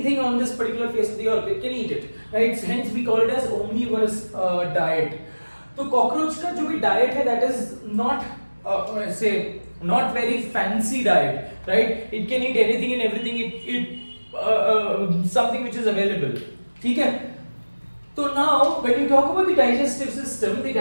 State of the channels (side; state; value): both; inverted; correlation -1.00